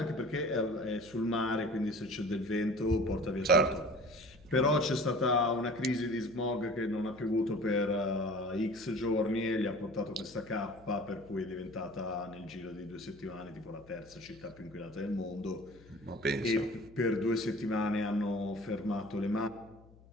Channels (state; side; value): noise; left; hum, 24 dB below the sound